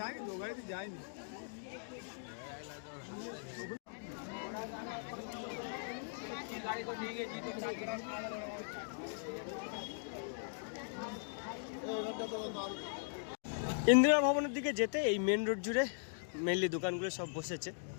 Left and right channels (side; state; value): right; silent; digital silence